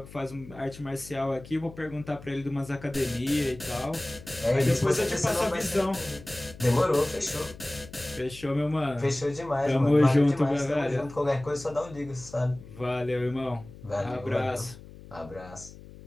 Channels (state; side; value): noise; left; hum, 18 dB below the sound